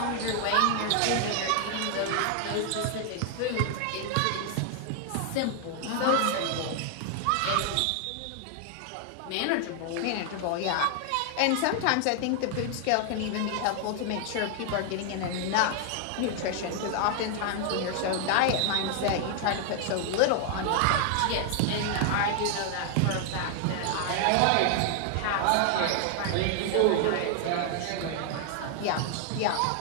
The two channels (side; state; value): both; different; correlation 0.00